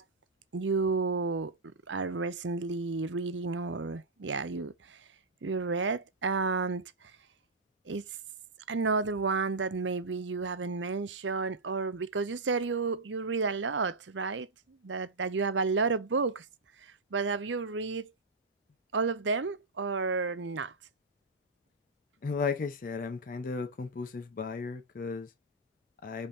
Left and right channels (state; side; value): quieter; left; 3.0 dB